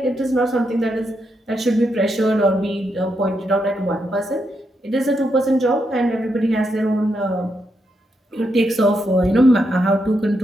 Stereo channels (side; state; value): both; normal; correlation 0.81